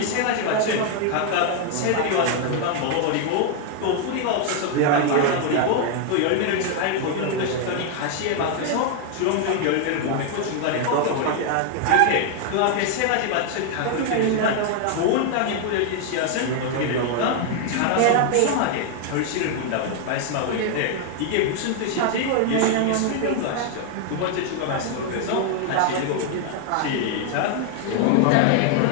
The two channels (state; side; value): different; both; correlation 0.00